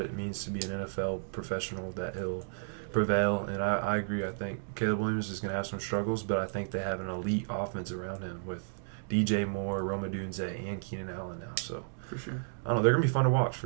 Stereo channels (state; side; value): silent; left; digital silence